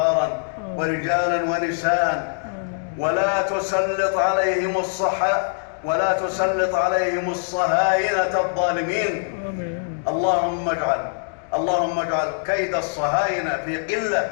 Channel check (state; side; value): silent; right; digital silence